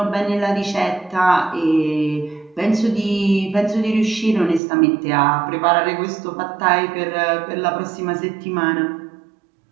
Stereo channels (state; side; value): drops out; left; at 4.6 s